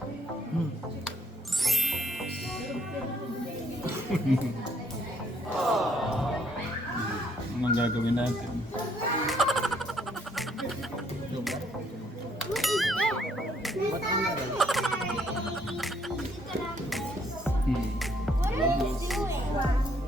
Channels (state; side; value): normal; both; correlation 0.67